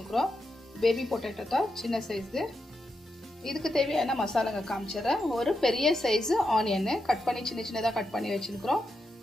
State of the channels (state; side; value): normal; both; correlation 0.86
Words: பேபி பொட்டேட்டோ தான் சின்ன சைஸு. இதுக்கு தேவையான மசாலாங்க காமிச்சிடுறேன். ஒரு பெரிய சைஸு ஆனியன் கட் பண்ணி சின்னதாக கட் பண்ணி வச்சுருக்கிறோம்.